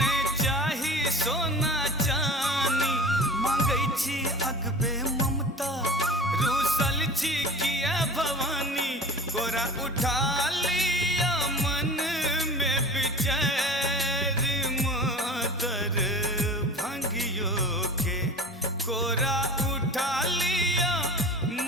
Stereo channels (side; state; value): both; normal; correlation 0.38